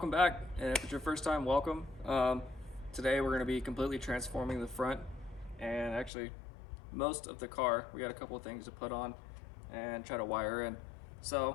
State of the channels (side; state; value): right; drops out; at 6.1 s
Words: back, and if it's your first time, welcome. Today we're going to be completely transforming the front and actually most of the car. We got a couple of things to put on and try to wire in.